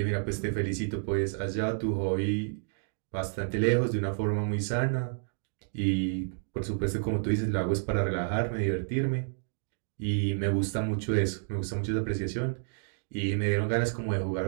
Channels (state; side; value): silent; left; digital silence